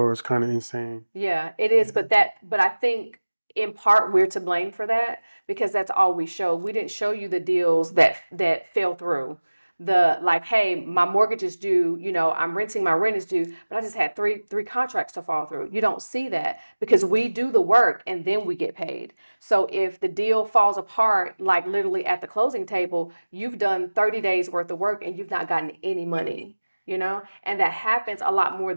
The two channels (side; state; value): both; inverted; correlation -1.00